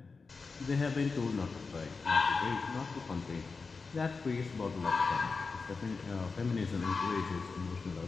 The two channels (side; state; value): right; quieter; 4.5 dB